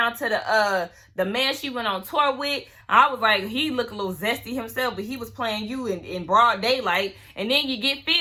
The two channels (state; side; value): identical; both; correlation 1.00